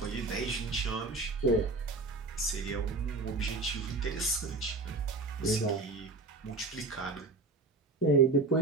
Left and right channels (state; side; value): quieter; left; 3.5 dB